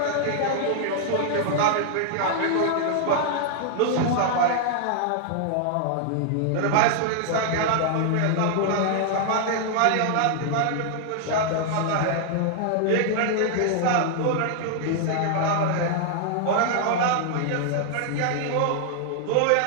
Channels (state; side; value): different; both; correlation 0.00